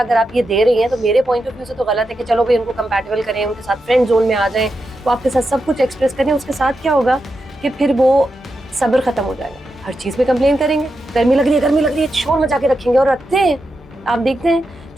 अगर आप ये दे रही हैं तो मेरे पॉइंट ऑफ व्यू से तो गलत है कि चलो भाई उनको कंपैटिबल करें, उनके साथ फ्रेंड जोन में आ जाएं, वो आपके साथ सब कुछ एक्सप्रेस करें। उसके साथ क्या होगा कि फिर वो सब्र खत्म हो जाएगा, हर चीज़ में कंप्लेन करेंगे, गर्मी लग रही है, शोर मचा के रखेंगे। और रखते हैं, आप देखते हैं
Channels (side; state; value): both; normal; correlation 0.87